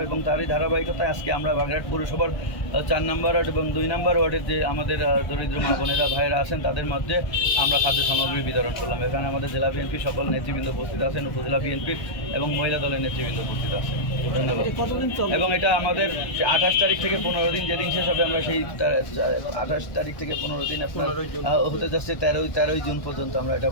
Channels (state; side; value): late; right; 1.2 ms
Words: এবং তারই ধারাবাহিকতায় আজকে আমরা বাগেরহাট পৌরসভার 4 নম্বর ওয়ার্ড এবং 2 নম্বর ওয়ার্ডের যে আমাদের দরিদ্র মা বোনেরা ভাইয়েরা আছেন তাদের মধ্যে আমরা খাদ্য সামগ্রী বিতরণ করলাম। এখানে আমাদের জেলা বিএনপি সকল নেতৃবৃন্দ উপস্থিত আছেন, উপজেলা বিএনপির এবং মহিলা দলের নেতৃবৃন্দ উপস্থিত আছেন। ধন্যবাদ। এবং এটা আমাদের 28 তারিখ থেকে 15 দিন, যেদিন শেষ হবে আমরা সেই 28 তারিখ থেকে 15 দিন আপনার হতে যাচ্ছে 13ই জুন পর্যন্ত আমরা এটা